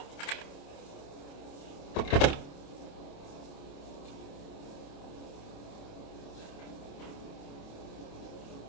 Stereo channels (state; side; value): late; right; 28 ms